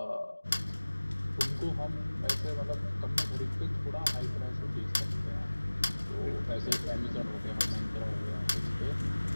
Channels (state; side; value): inverted; both; correlation -1.00